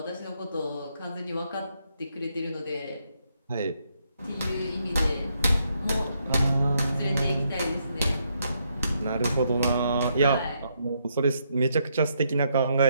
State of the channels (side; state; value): both; inverted; correlation -0.76